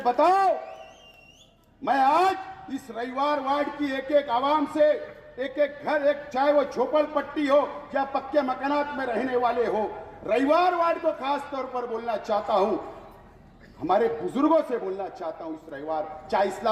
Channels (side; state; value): both; identical; correlation 1.00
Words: बताओ। मैं आज इस रविवार वार्ड की एक एक आवाम से, एक एक घर, एक चाहे वो झोपड़पट्टी हो या पक्के मकानात में रहने वाले हो, रविवार वार्ड को खास तौर पर बोलना चाहता हूं, हमारे बुजुर्गों से बोलना चाहता हूं। इस रविवार चाहे